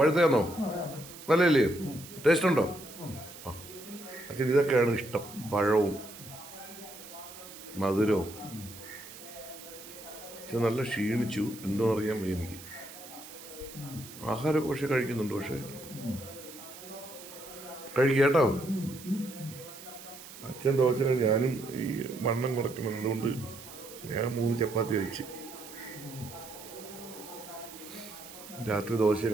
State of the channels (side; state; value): right; noise; hiss, 15 dB below the sound